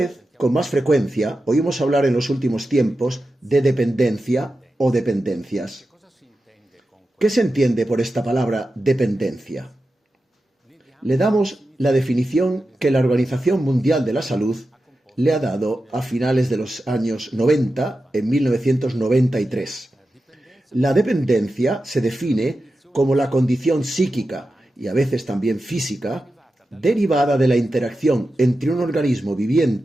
con más frecuencia, oímos hablar en los últimos tiempos de dependencia o dependencias. ¿Qué se entiende por esta palabra dependencia? Le damos la definición que la Organización Mundial de la Salud le ha dado a finales de los años 90, en 1993. La dependencia se define como la condición psíquica y a veces también física derivada de la interacción entre un organismo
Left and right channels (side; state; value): both; normal; correlation 0.91